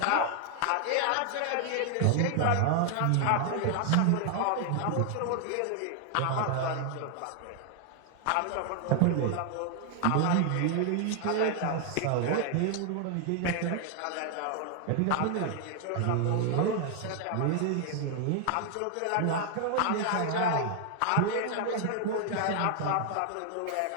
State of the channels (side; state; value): both; different; correlation 0.00